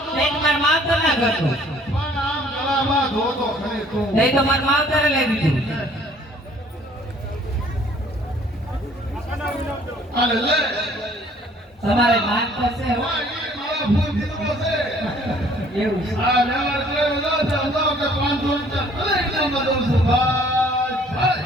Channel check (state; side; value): normal; both; correlation 0.57